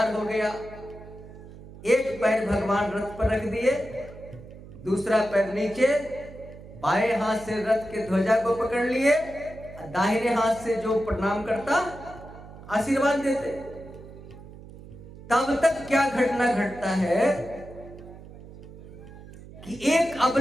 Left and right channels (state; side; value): noise; right; hum, 17 dB below the sound